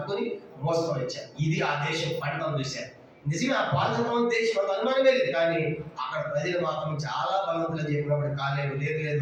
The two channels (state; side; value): identical; both; correlation 1.00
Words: మోసుకొని వచ్చారు. ఇది ఆ దేశం పంటను చూశారు. నిజంగా ఆ పాల్గొన్న దేశం అంత అనుమానమే లేదు. కానీ అక్కడ ప్రజలు మాత్రం చాలా బలవంతులు చెప్పినప్పుడు కాలేబు